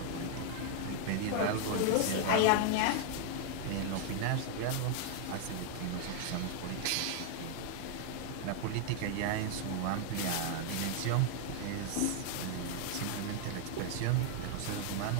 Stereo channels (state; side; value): different; both; correlation 0.00